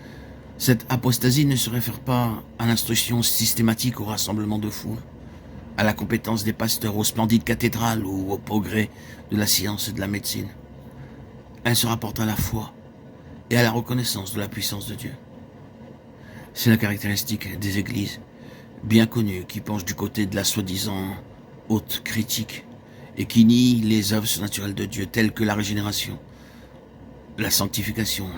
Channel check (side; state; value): both; identical; correlation 1.00